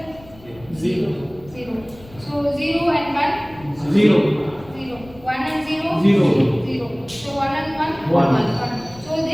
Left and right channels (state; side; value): noise; left; rumble, 22 dB below the sound